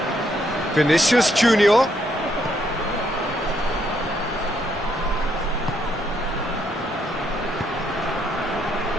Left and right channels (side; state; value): both; normal; correlation 0.73